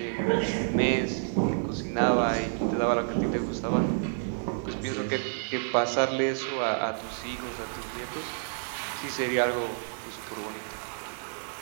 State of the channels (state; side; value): silent; left; digital silence